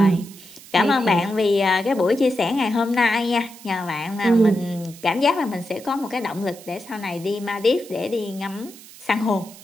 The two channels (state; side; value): noise; right; hiss, 19 dB below the sound